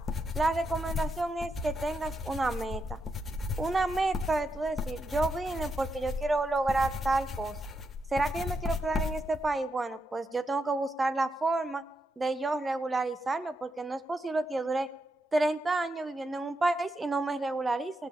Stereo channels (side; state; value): both; normal; correlation 0.83